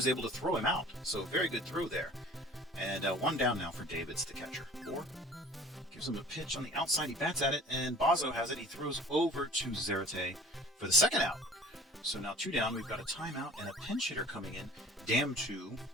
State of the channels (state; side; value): normal; both; correlation 0.47